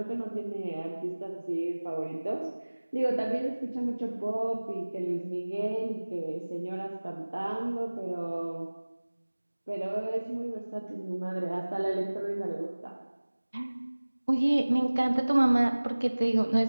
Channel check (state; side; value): inverted; both; correlation -1.00